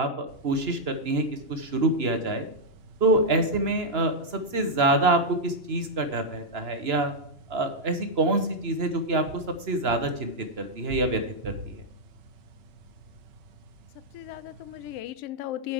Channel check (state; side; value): late; left; 2.9 ms